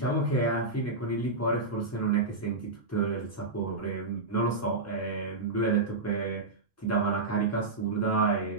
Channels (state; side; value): quieter; left; 3.5 dB